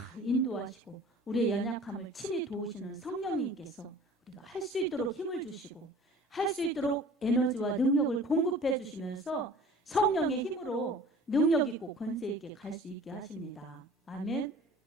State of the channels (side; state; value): both; normal; correlation 0.46